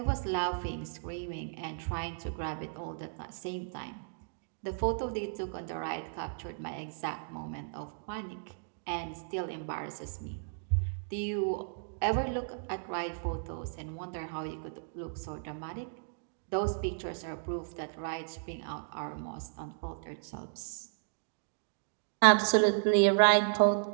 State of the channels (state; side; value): silent; left; digital silence